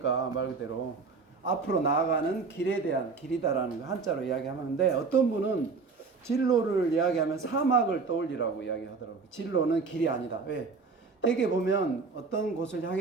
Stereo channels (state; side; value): quieter; left; 4.6 dB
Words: 말 그대로 앞으로 나아가는 길에 대한 길이다라는 거 한자로 이야기하는데, 어떤 분은 진로를 이야기하면 사막을 떠올리라고 이야기하더라고요. 진로는 길이 아니다. 왜? 되게 보면 어떤 곳을